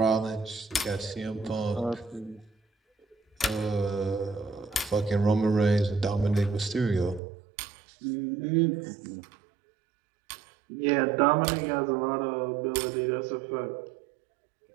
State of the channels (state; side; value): drops out; left; at 7.2 s